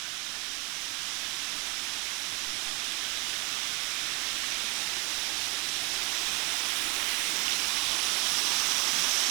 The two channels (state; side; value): quieter; left; 26.7 dB